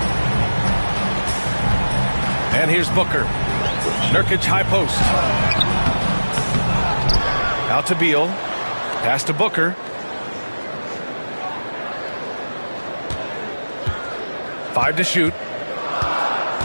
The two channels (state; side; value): inverted; both; correlation -1.00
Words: And here's Booker. Nurkic high post. Out to Beal. Pass to Booker. Five to shoot.